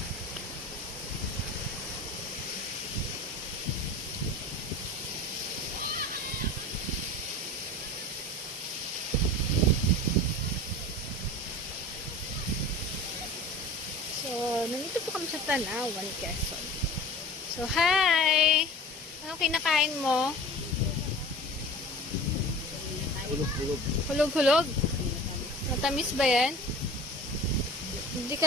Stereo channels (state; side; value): normal; both; correlation 0.38